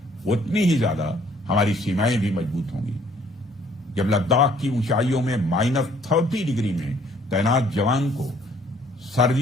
उतनी ही ज्यादा हमारी सीमाएं भी मजबूत होंगी। जब लद्दाख की ऊंचाइयों में -30 डिग्री में तैनात जवान को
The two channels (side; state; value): both; normal; correlation 0.61